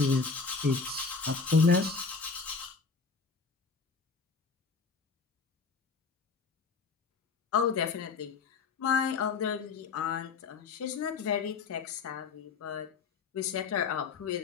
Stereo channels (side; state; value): right; quieter; 5.0 dB